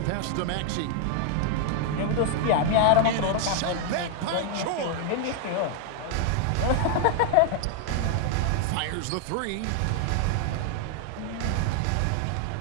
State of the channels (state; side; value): different; both; correlation 0.00